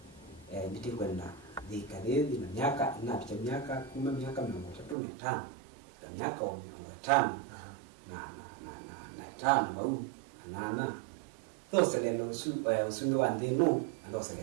nditikwenda dhikadhi na miaka inapicha miaka 10 miaka 35 na miaka 5 na tano bau anana those lelo usumi wa ndeno those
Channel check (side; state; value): left; drops out; at 5.0 s